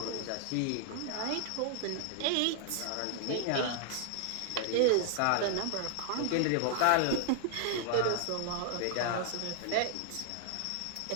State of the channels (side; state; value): both; different; correlation -0.01